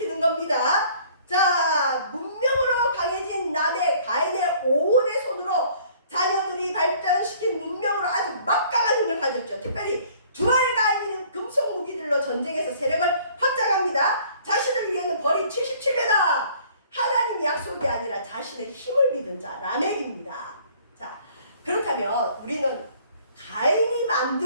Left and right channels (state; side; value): inverted; both; correlation -0.56